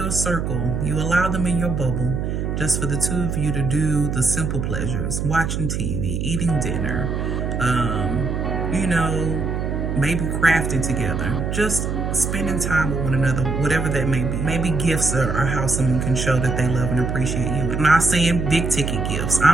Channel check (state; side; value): noise; right; hum, 2 dB below the sound